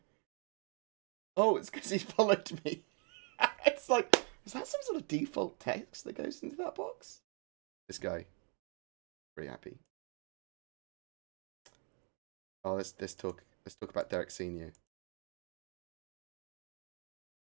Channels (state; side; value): quieter; left; 37.8 dB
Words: Oh, it's because he followed me. It's like, is that some sort of default text that goes into that box? This guy, pretty happy. Oh, let's talk about Derek Senior.